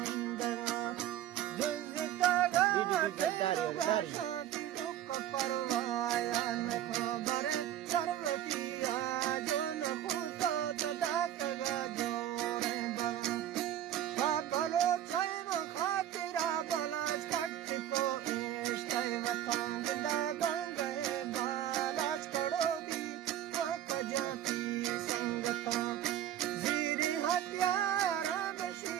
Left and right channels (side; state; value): left; quieter; 11.7 dB